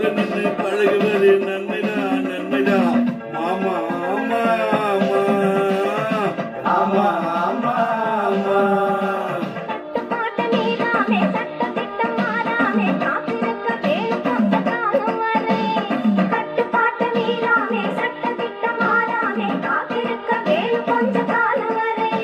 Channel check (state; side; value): identical; both; correlation 1.00